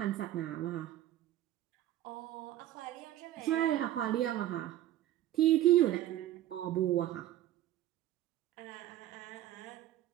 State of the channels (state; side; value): quieter; left; 13.5 dB